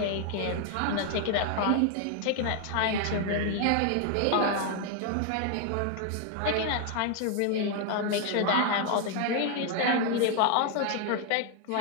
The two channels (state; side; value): different; both; correlation 0.01